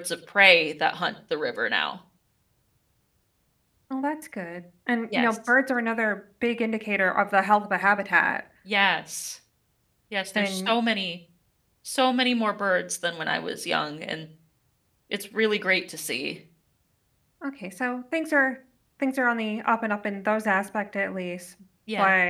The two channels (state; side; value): identical; both; correlation 1.00